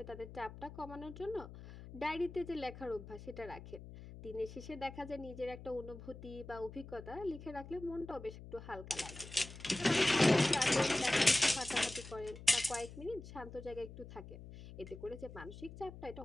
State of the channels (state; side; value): noise; left; hum, 14 dB below the sound